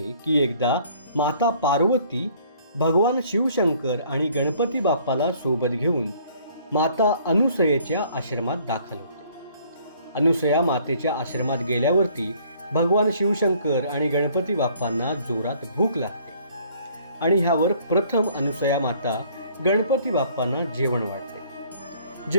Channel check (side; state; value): both; inverted; correlation -0.59